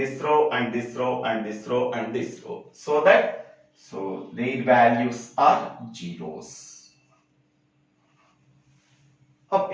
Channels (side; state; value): both; identical; correlation 1.00